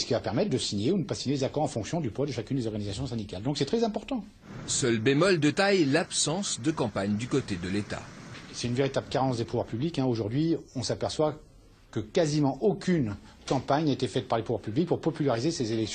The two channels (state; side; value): identical; both; correlation 1.00